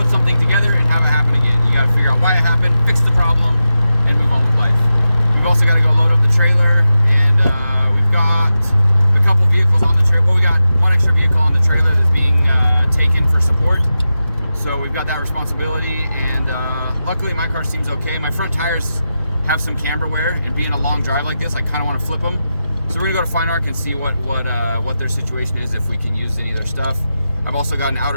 something together and have it happen again. You got to figure out why it happened, fix the problem, and move on with life. We've also got to go load up the trailer, and we've got a couple vehicles on the trailer. Well, we got one extra vehicle on the trailer that's being taken for support. So we've got that responsibility, and luckily my car seems okay. My front tires have some camber wear, and being a long drive like this, I kind of want to flip them. So we're gonna go to Fine Arc and see what their situation is, if we can use any of their stuff. I've also got an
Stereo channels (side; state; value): both; inverted; correlation -0.91